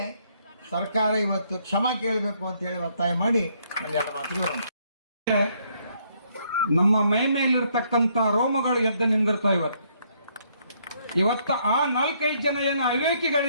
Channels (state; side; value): inverted; both; correlation -0.70